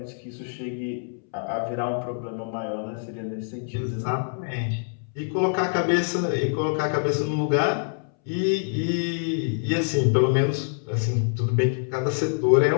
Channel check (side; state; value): right; silent; 61 dB below the other